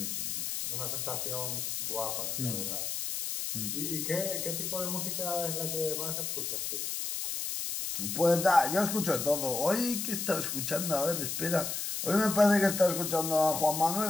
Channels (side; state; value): left; noise; hiss, 3 dB below the sound